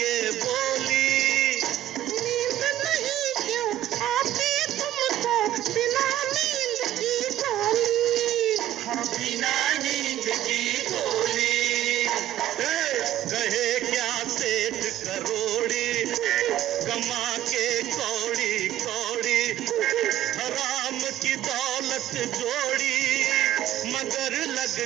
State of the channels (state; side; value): quieter; left; 13.0 dB